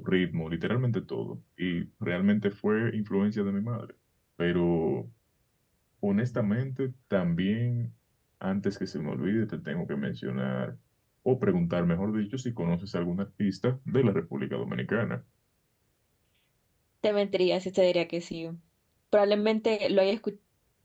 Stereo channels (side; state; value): both; identical; correlation 1.00